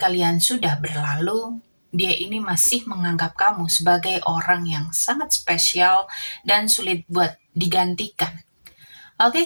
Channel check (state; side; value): inverted; both; correlation -1.00